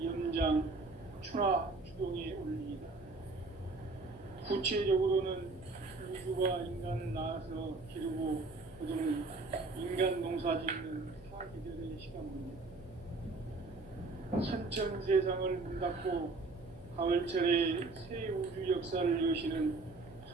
염장, 추나, 추동의 원리이다. 구체적으로는 우주가 인간을 낳아서 기르고 거두는 인간 농사 짓는 사계절의 시간입니다. 선천 세상을 문 닫고 가을철에 새 우주 역사를 여시는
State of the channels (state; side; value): quieter; left; 3.6 dB